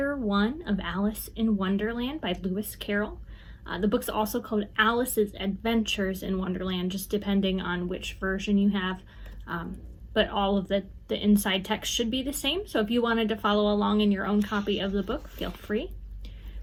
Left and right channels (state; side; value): identical; both; correlation 1.00